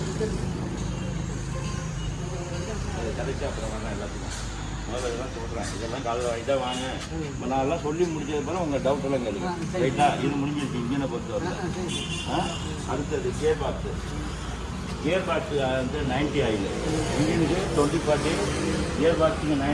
கதைச்சி அப்புறம் வேணாம் எல்லாத்துக்கும் முதல்ல இதெல்லாம் சொல்கிறேன். இதெல்லாம் காலையில் இதை வாங்க நான்லாம் சொல்லி முடிச்சது பிறகு உங்கள் டவுட்டெல்லாம் கேளுங்க. ரைட்டாக இது முடிஞ்சிருச்சு இன்ஜினை பொறுத்த வரல. அடுத்தது கியர் பாக்ஸு. கியர் பாக்ஸு வந்து 90 ஆயில், இன்ஜினுக்கு 20-40, கியர் பாக்ஸுக்கு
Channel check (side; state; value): both; identical; correlation 1.00